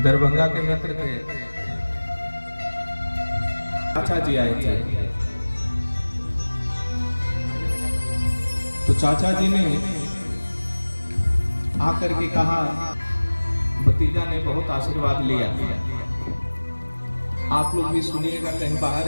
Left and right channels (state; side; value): inverted; both; correlation -1.00